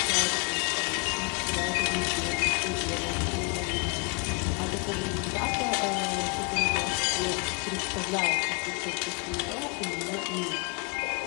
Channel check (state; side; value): quieter; right; 34.2 dB